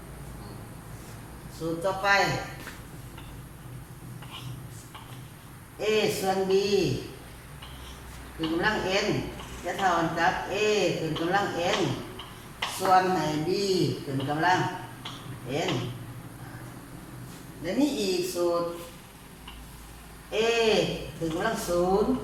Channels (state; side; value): identical; both; correlation 1.00